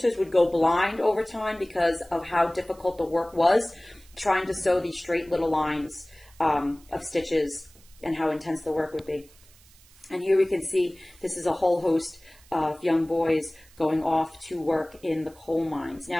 would go blind over time because of how difficult the work was, trying to sew these straight little lines of stitches and how intense the work would be. And here we can see this is a whole host of young boys going off to work in the coal mines.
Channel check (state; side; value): noise; right; hiss, 27 dB below the sound